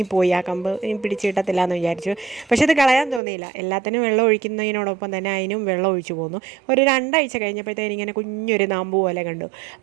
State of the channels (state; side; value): drops out; left; at 3.2 s